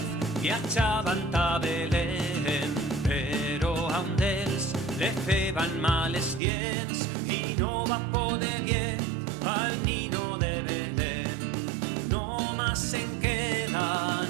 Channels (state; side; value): drops out; left; at 6.4 s